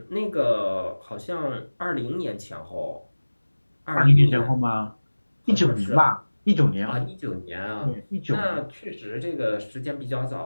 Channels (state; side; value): inverted; both; correlation -1.00